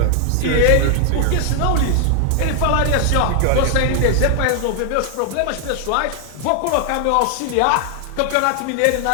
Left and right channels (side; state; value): both; different; correlation 0.00